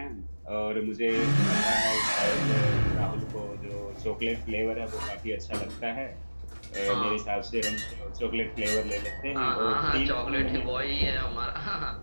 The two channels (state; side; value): inverted; both; correlation -1.00